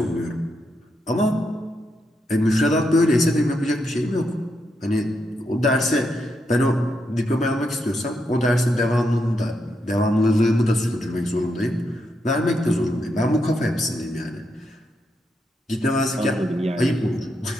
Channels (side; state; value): both; normal; correlation 0.82